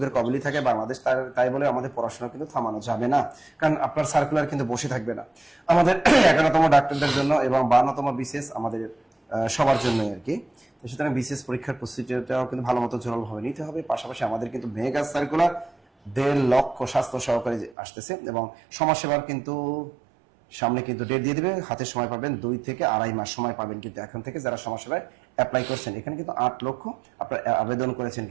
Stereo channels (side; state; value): left; drops out; at 17.8 s